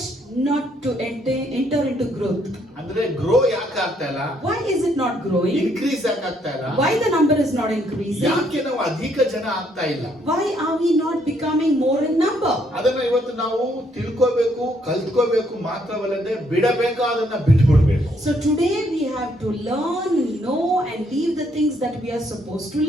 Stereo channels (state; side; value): normal; both; correlation 0.70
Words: not to enter into growth? ಅಂದ್ರೆ ಗ್ರೋ ಯಾಕೆ ಆಗ್ತಾ ಇಲ್ಲ? Why is it not growing? Increase ಯಾಕೆ ಆಗ್ತಾ ಇಲ್ಲ? Why the number is not increasing? ಯಾಕೆ ನಾವು ಅಧಿಕ ಜನ ಆಗ್ತಾ ಇಲ್ಲ? Why are we not becoming more in number? ಅದನ್ನ ಇವತ್ತು ನಾವು ತಿಳ್ಕೋಬೇಕು, ಕಲ್ತ್ಕೋಬೇಕು, ಮಾತ್ರವಲ್ಲದೆ ಬಿಡಬೇಕಾದನ್ನ ಬಿಟ್ಬಿಡ್ಬೇಕು. So today we have to learn, know and leave the things that we are supposed to